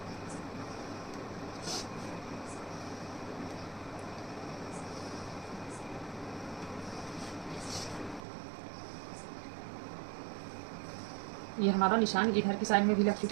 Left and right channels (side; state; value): left; drops out; at 8.2 s